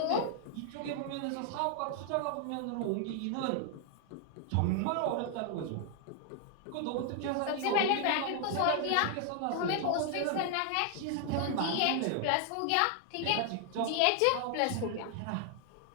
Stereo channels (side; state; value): both; different; correlation 0.00